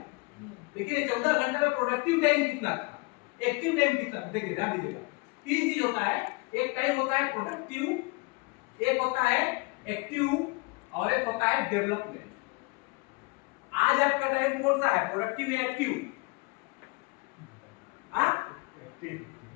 लेकिन ये 14 घंटे में प्रोडक्टिव टाइम कितना था, एक्टिव टाइम कितना? देखिए ध्यान दीजिएगा, 3 चीज होता है। एक टाइम होता है प्रोडक्टिव, एक होता है एक्टिव और एक होता है डेवलपमेंट। आज आपका टाइम कौन सा है, प्रोडक्टिव या एक्टिव?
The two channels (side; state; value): right; quieter; 27.8 dB